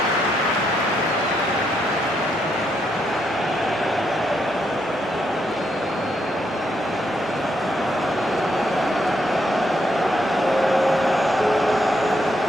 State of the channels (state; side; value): normal; both; correlation 0.77